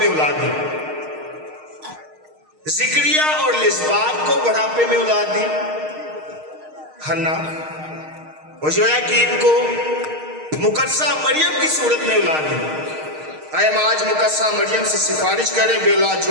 औलाद दी, जिक्रिया और लिस्बात को बुढ़ापे में औलाद दी, हन्ना और योयाकीम को मुकद्दसा मरियम की सूरत में औलाद दी। आए हम आज मुकद्दसा मरियम से सिफारिश करें बेऔलाद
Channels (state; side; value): late; left; 6.5 ms